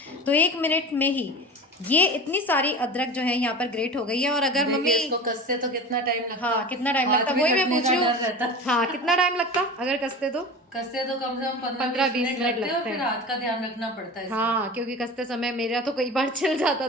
तो 1 मिनट में ही ये इतनी सारी अदरक जो है यहाँ पर ग्रेट हो गई है। और अगर मम्मी इसको कसते तो कितना टाइम लगता, हाँ कितना टाइम हाथ लगता, भी वही मैं कटने पूछ का रही डर रहता। हूँ। हाँ कितना टाइम लगता अगर कसते तो? कसते तो कम से कम 15-20 मिनट लगते हैं, और लगते फिर हैं। हाथ का ध्यान रखना पड़ता है इसमें। हाँ क्योंकि कसते समय मेरा तो कई बार छिल जाता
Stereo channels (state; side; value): normal; both; correlation 0.33